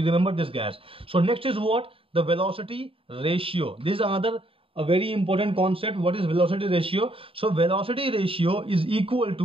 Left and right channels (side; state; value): left; late; 0.27 ms